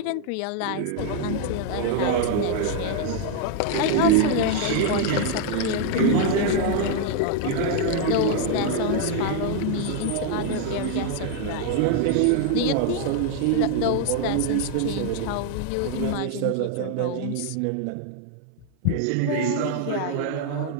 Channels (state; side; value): different; both; correlation 0.00